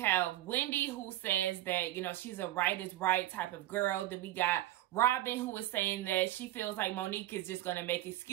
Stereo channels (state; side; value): quieter; left; 14.8 dB